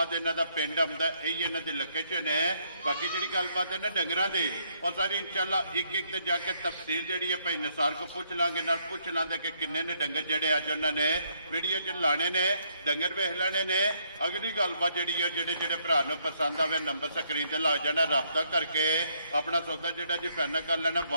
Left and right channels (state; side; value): inverted; both; correlation -0.71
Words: इन्हों का पिंड आता, यही इन्हों की लोकेशन है। बाकी जी गलबात है ना डंगरां दी और सारी इंशाअल्लाह एक एक ते जाके तफसील जी है भाई नसार को पूछ लांगे ना पूछ लांगे कि किन्ने ने डंगर जड़े अज उन्होंने वीडियो च लाने ने डंगर वेख लेने ने। अगली गलबात जी है जेडे भरा नूं पसंद आवे नंबर स्क्रीन ते ला जाना, रब्ता करके अपना सौदा जो जी फाइनल कर लेना।